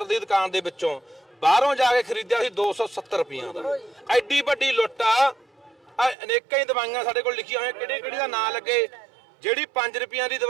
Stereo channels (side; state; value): left; drops out; at 6.2 s